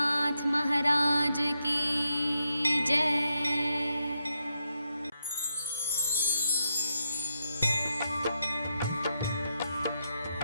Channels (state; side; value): inverted; both; correlation -0.82